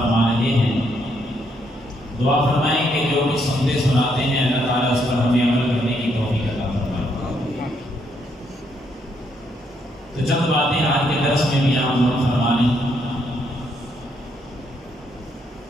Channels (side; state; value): both; normal; correlation 0.74